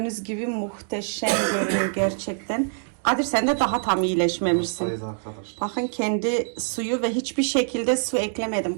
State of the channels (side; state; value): left; silent; digital silence